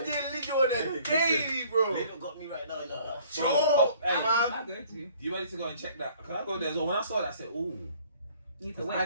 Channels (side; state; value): both; inverted; correlation -0.56